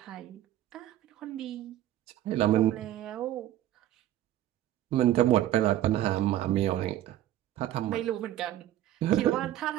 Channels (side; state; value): left; quieter; 12.9 dB